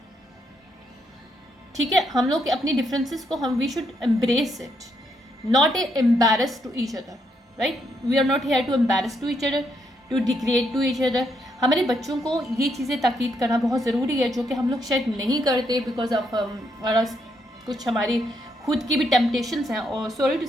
ठीक है, हम लोग अपनी डिफरेंसेस को we should embrace it, not embarrass to each other, right? We are not here to embarrass to each other, to degrade to each other. हमारे बच्चों को ये चीज़ें ताकीद करना बहुत ज़रूरी है, जो कि हम लोग शायद नहीं करते बिकॉज ऑफ कुछ हमारी खुद की भी टेम्पटेशंस हैं, और सॉरी टू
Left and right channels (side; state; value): both; normal; correlation 0.76